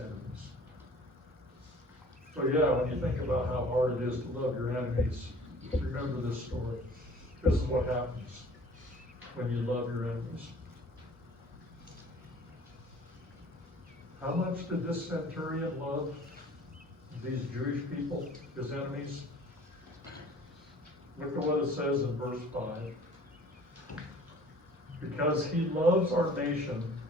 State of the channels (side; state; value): both; normal; correlation 0.50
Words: So yeah, when you think about how hard it is to love your enemies, remember this story. This is what happens when you love your enemies. How much did this centurion love these Jewish people, his enemies? Look at what it says in verse 5. Because he loves our nation